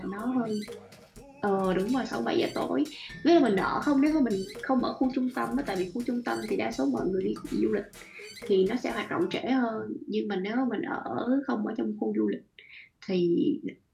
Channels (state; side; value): identical; both; correlation 1.00